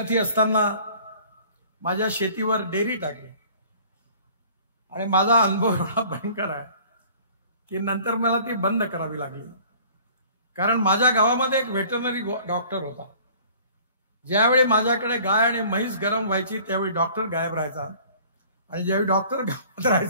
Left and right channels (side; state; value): both; inverted; correlation -0.50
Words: असताना माझ्या शेतीवर डेअरी टाकली आणि माझा अनुभव एवढा भयंकर आहे की नंतर मला ती बंद करावी लागली. कारण माझ्या गावामध्ये एक व्हेटरनरी डॉक्टर होता. ज्यावेळी माझ्याकडे गाय आणि म्हैस गरम व्हायची त्यावेळी डॉक्टर गायब राहायचा आणि ज्यावेळी डॉक्टर गावात